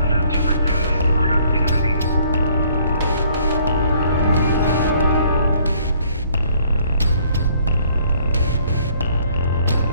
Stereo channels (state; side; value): inverted; both; correlation -0.61